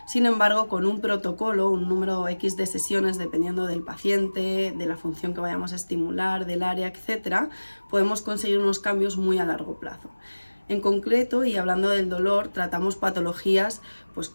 Sin embargo, con un protocolo, un número X de sesiones, dependiendo del paciente, de la función que vayamos a estimular, del área, etc., podemos conseguir unos cambios muy a largo plazo. En concreto, y hablando del dolor, tratamos patologías pues,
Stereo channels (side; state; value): both; inverted; correlation -1.00